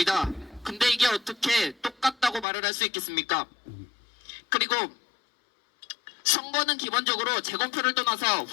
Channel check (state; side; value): drops out; right; at 2.5 s